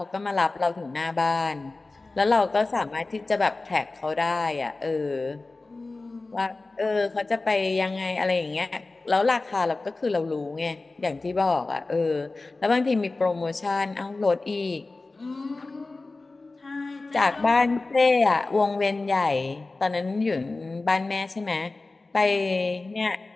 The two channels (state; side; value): quieter; right; 3.4 dB